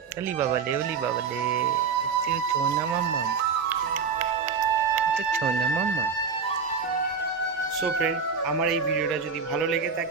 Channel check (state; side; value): quieter; left; 5.6 dB